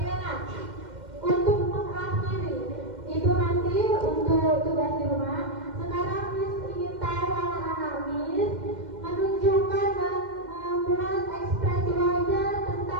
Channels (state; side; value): late; left; 2.1 ms